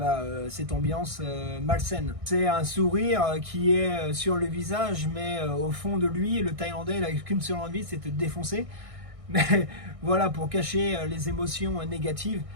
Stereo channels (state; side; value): late; left; 1.6 ms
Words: cette ambiance malsaine. C'est un sourire qui est sur le visage, mais au fond de lui, le Thaïlandais il n'a qu'une seule envie, c'est de te défoncer. Mais voilà, pour cacher les émotions négatives,